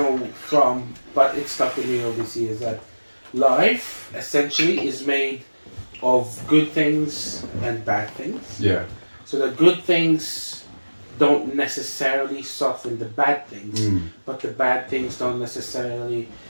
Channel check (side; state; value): both; inverted; correlation -1.00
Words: from, but it stuck with me all this year. Is that life essentially is made of good things and bad things. Yeah. So the good things don't necessarily soften the bad things, Mm. but the bad things don't necessarily